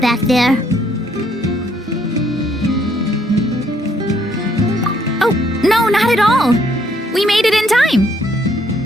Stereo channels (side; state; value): both; normal; correlation 0.69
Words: there. Oh, no, not at all. We made it in